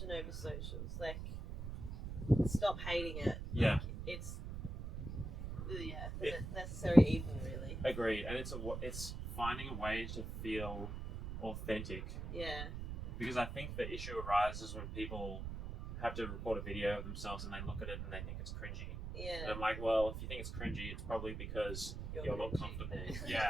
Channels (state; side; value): noise; right; rumble, 6 dB below the sound